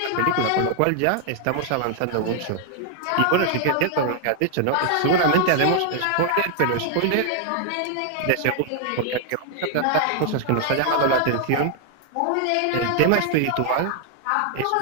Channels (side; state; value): both; different; correlation 0.00